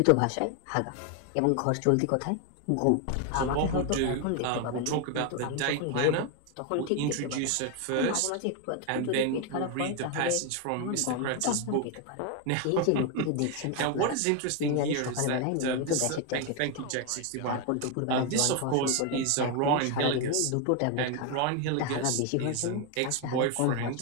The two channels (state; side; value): different; both; correlation 0.01